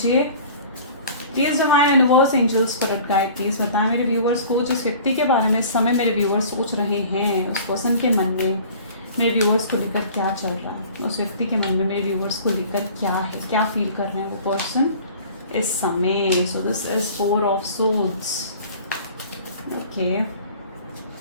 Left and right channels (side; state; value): both; inverted; correlation -0.45